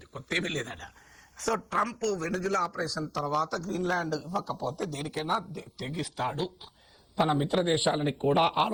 కొత్త ఏమీ లేదట. సో ట్రంప్ వెనజులా ఆపరేషన్ తర్వాత గ్రీన్లాండ్ ఇవ్వకపోతే దేనికైనా తెగిస్తాడు, తన మిత్ర దేశాలని కూడా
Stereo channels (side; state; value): both; identical; correlation 1.00